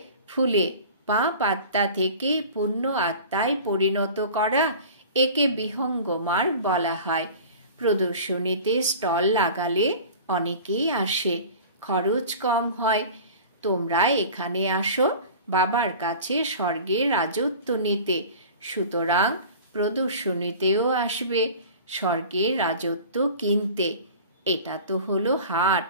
ফুলে, পাপ আত্মা থেকে পুণ্য আত্মায় পরিণত করা, একে বিহঙ্গ মার্গ বলা হয়। প্রদর্শনীতে স্টল লাগালে অনেকেই আসে, খরচ কম হয়। তোমরা এখানে আসো বাবার কাছে স্বর্গের রাজত্ব নিতে, সুতরাং প্রদর্শনীতেও আসবে স্বর্গের রাজত্ব কিনতে। এটা তো হলো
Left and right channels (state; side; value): inverted; both; correlation -0.39